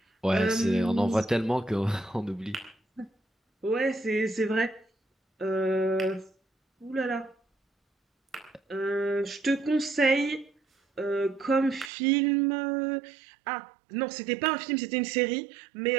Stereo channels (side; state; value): left; drops out; at 11.9 s